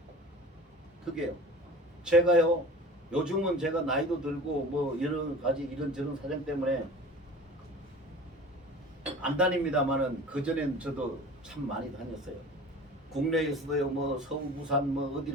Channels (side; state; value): both; normal; correlation 0.39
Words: 그게요. 제가요 요즘은 제가 나이도 들고 뭐 여러 가지 이런저런 사정 때문에 안 다닙니다만은, 그전엔 저도 참 많이 다녔어요. 국내에서도요 뭐 서울 부산 뭐